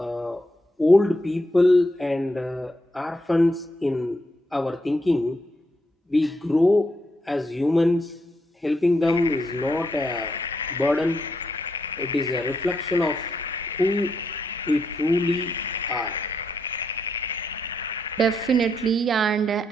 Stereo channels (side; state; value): both; normal; correlation 0.79